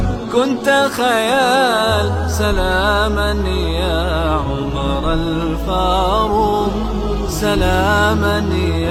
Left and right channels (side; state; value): both; identical; correlation 1.00